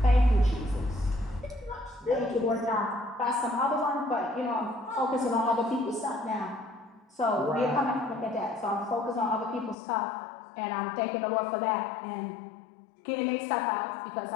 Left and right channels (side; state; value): right; drops out; at 9.8 s